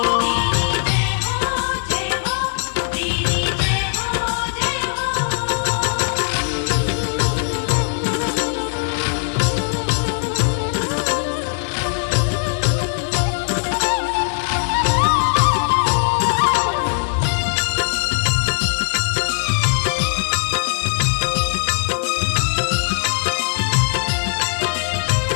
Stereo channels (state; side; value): silent; right; digital silence